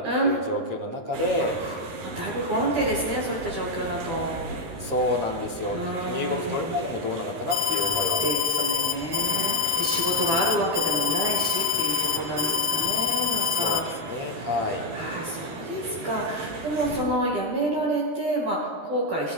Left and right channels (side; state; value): left; late; 13 ms